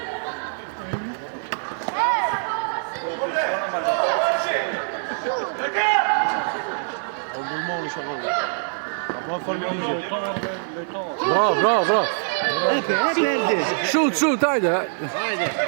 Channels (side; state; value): left; silent; 57 dB below the other